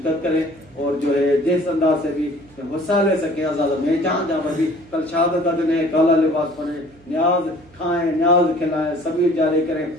करें, और जो है जिस अंदाज से भी हिस्सा ले सके आजाद में, जहाँ जहाँ पर भी कल शहादत का दिन है, काला लिबास पहने, न्याज खाएं, न्याज खिलाएं, सबीर जारी करें,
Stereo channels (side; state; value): right; noise; hum, 27 dB below the sound